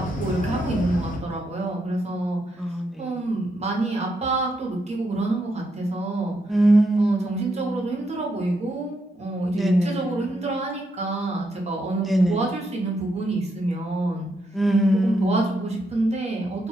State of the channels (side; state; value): both; normal; correlation 0.79